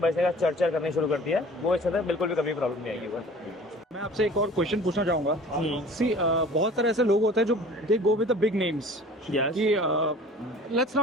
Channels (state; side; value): normal; both; correlation 0.46